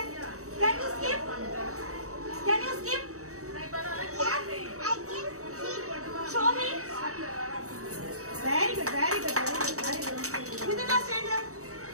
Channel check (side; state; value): left; late; 0.65 ms